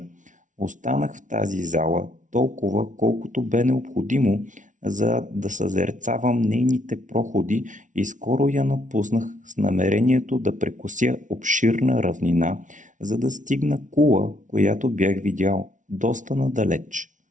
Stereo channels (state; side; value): late; left; 0.37 ms